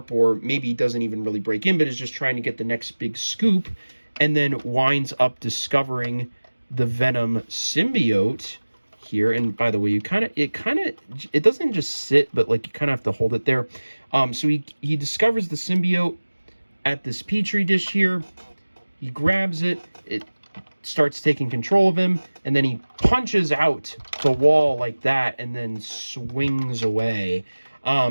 or maybe doesn't even really break in, but is just trying to get the next big scoop, and then winds up discovering the Venom symbiote here. And by the way, it doesn't just sit, but like you kind of have to hold it there. So he discovers the symbiote at this petri dish here. He grabs it. It starts taking control of him, and then he punches out the wall like that, and then swings away.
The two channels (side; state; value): both; inverted; correlation -1.00